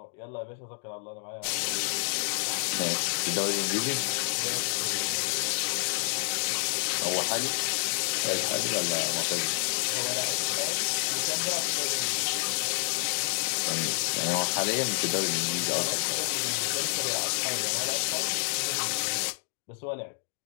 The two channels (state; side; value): silent; right; 59 dB below the other